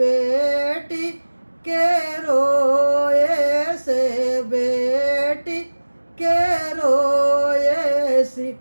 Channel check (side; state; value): both; inverted; correlation -1.00